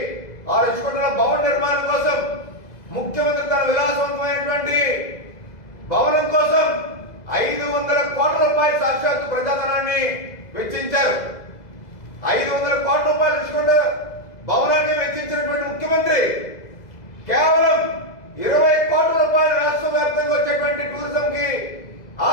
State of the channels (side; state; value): right; late; 2.0 ms